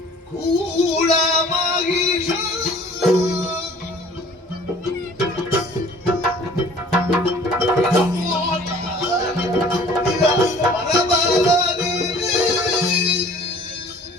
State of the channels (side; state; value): both; normal; correlation 0.51